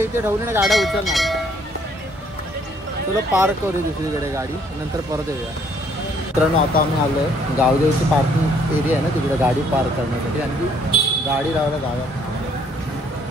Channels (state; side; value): normal; both; correlation 0.64